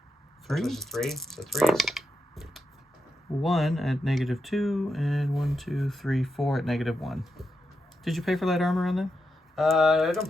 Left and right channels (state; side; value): normal; both; correlation 0.85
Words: 3. This is 3. So 3s. 1 at -2, and 1, 2, 3, 4 at -1. Did you pay for light armor on them? I don't